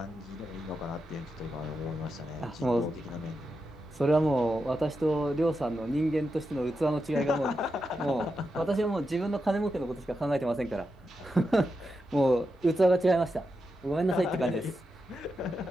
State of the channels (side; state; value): both; normal; correlation 0.87